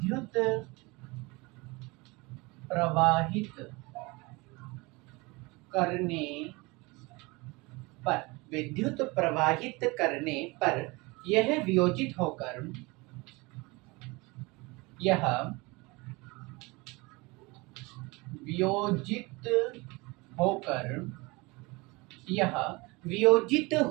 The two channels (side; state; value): left; quieter; 24.9 dB